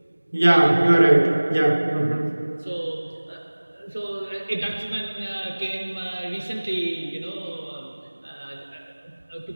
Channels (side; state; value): both; inverted; correlation -1.00